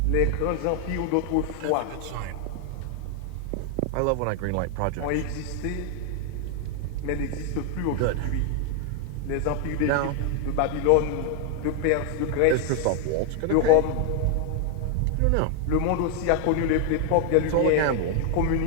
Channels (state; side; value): different; both; correlation 0.00